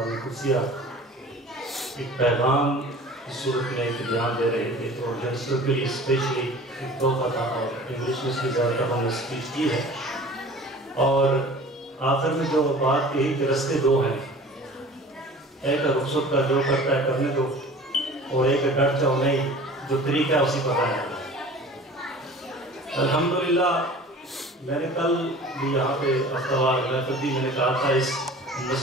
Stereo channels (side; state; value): both; normal; correlation 0.43